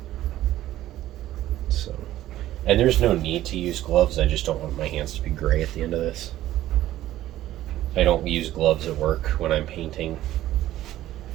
So, and there's no need to use gloves. I just don't want my hands to be gray at the end of this. I don't use gloves at work when I'm painting,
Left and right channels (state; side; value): quieter; left; 14.1 dB